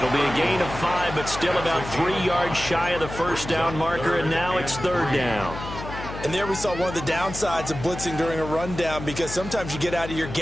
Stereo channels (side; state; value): left; noise; hum, 10 dB below the sound